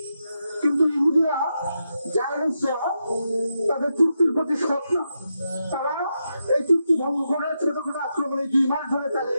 কিন্তু ইহুদিরা জায়নিস্টরা তাদের চুক্তির প্রতি সৎ না। তারা এই চুক্তি ভঙ্গ করে ছোটখাটো আক্রমণে 2 মাস ধরে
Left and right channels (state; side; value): inverted; both; correlation -0.85